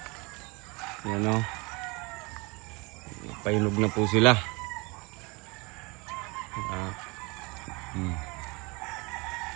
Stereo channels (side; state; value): left; quieter; 27.1 dB